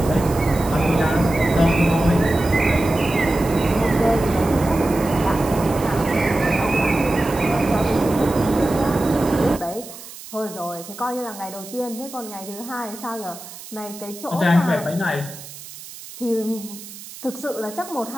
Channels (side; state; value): right; noise; hiss, 15 dB below the sound